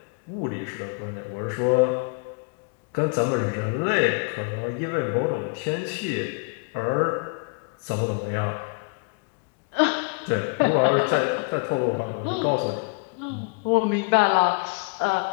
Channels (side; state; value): right; quieter; 35.2 dB